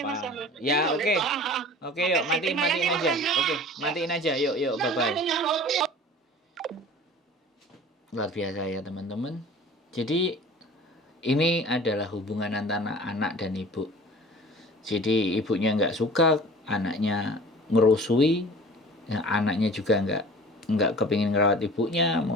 Ya oke, oke yuk, matiin aja. Oke, matiin aja, yuk, bye-bye. Luar biasa ya teman-teman. Jadi ini adalah hubungan antara anak dan ibu. Jadi ibunya nggak suka, anaknya ngerusui, ya, anaknya juga nggak kepingin ngerawat ibunya,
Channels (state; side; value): normal; both; correlation 0.43